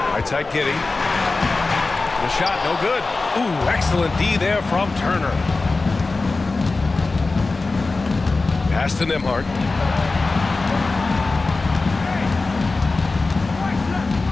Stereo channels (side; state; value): right; quieter; 3.6 dB